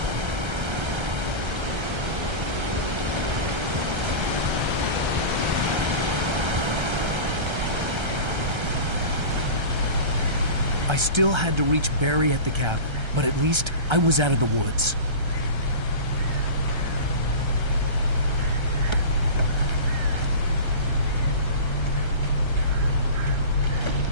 I still had to reach Barry at the cabin, but at least I was out of the woods.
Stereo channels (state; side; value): late; left; 1.3 ms